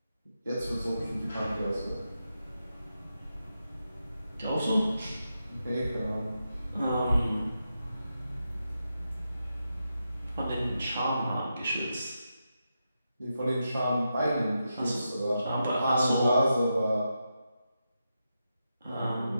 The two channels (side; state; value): both; inverted; correlation -0.87